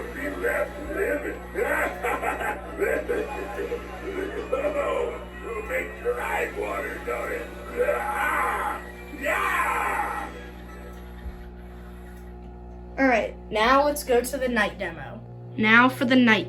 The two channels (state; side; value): identical; both; correlation 1.00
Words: be left living. Oh, it'll make your eyes water, don't it? Yeah! All right, now let's go to the night demo. Now for the